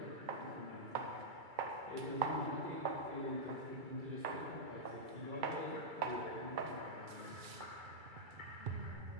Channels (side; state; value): left; late; 2.3 ms